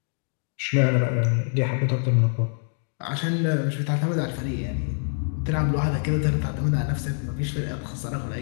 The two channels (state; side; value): silent; right; 62 dB below the other